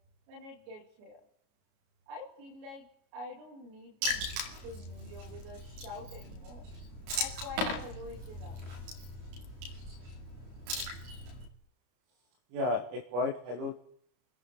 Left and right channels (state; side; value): late; left; 33 ms